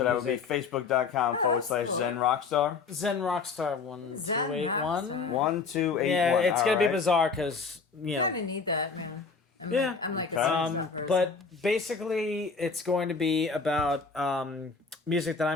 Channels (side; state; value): right; quieter; 4.9 dB